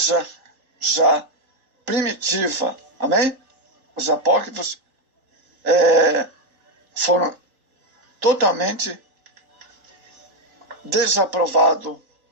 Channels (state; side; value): late; left; 3.8 ms